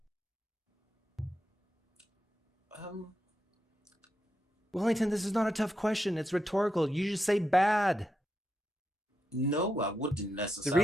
Wellington, this is not a tough question. It's rhetorical. You just say bad. No, I wouldn't necessarily. The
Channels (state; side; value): normal; both; correlation 0.84